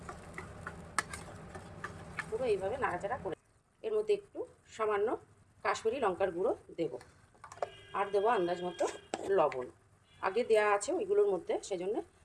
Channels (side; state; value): both; identical; correlation 1.00